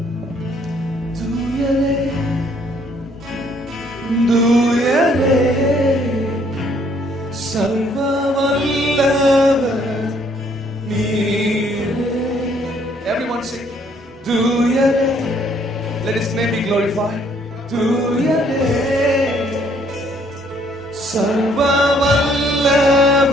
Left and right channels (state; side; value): normal; both; correlation 0.65